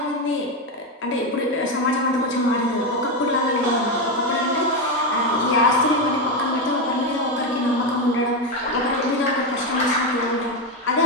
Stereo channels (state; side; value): normal; both; correlation 0.11